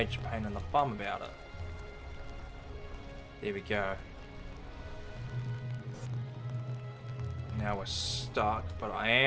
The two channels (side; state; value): both; identical; correlation 1.00